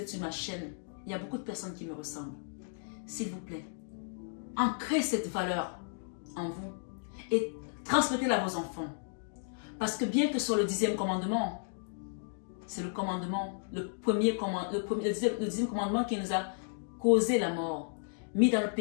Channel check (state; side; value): silent; right; digital silence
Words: sur ma chaîne, il y a beaucoup de personnes qui me ressemblent. S'il vous plaît, ancrez cette valeur en vous et transmettez-la à vos enfants. Parce que bien que ce soit le 10e commandement, c'est le commandement, le 10e commandement qui nous a causé la mort, mis dans le